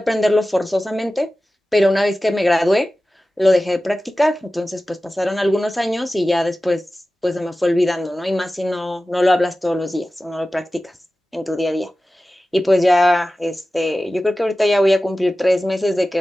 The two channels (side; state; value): both; normal; correlation 0.95